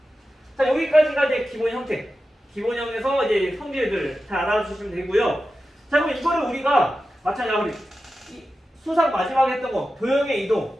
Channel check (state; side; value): normal; both; correlation 0.92